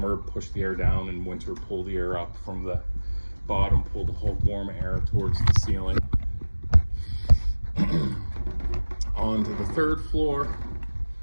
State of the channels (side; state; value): both; inverted; correlation -1.00